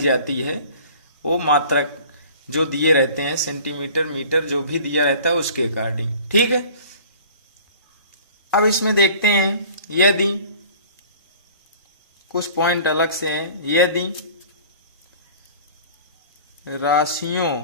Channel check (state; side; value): inverted; both; correlation -0.46